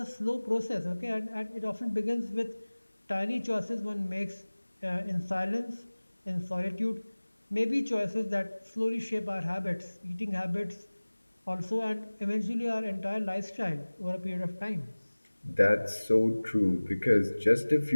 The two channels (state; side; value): inverted; both; correlation -1.00